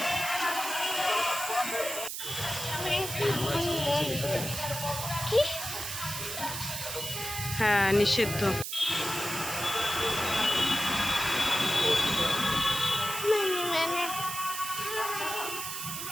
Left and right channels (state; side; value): noise; right; hiss, 5 dB below the sound